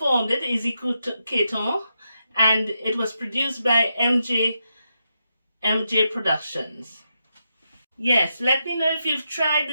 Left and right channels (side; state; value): both; inverted; correlation -0.84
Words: it, Izzy Caton, and it was produced by MJ Productions. Yes, let me know if you've tried